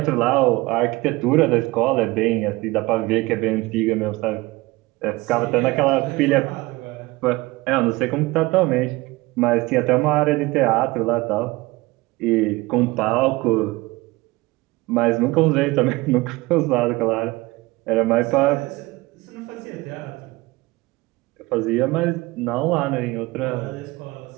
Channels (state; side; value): quieter; left; 21.3 dB